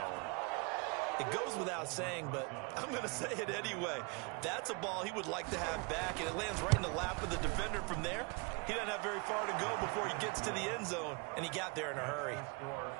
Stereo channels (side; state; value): left; quieter; 30.0 dB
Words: It goes without saying, but I'm going to say it anyway. That's a ball he would like to have back, and it lands right in the lap of the defender from there. He doesn't have very far to go before he gets to the end zone, and he got there in a hurry.